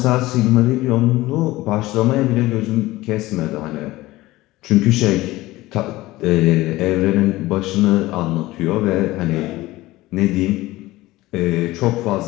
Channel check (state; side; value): quieter; right; 18.3 dB